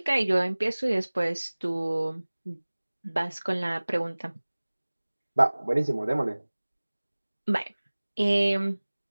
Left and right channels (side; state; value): both; inverted; correlation -1.00